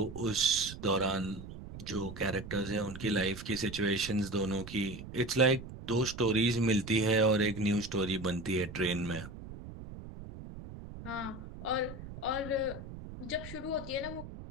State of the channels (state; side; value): noise; right; rumble, 12 dB below the sound